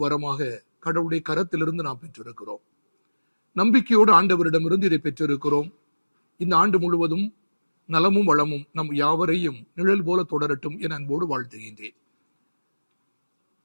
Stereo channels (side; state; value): both; inverted; correlation -1.00